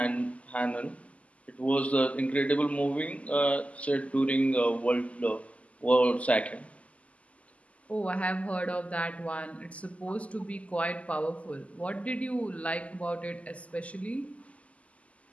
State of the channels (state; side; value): late; right; 0.067 ms